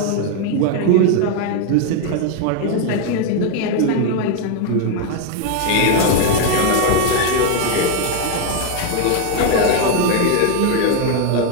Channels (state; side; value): different; both; correlation 0.01